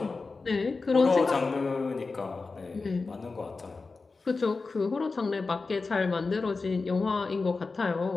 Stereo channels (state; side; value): quieter; right; 4.0 dB